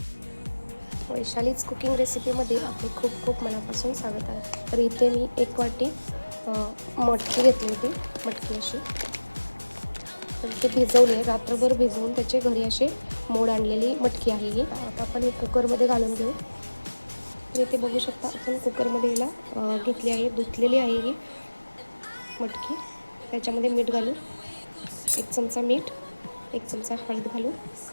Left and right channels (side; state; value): both; inverted; correlation -1.00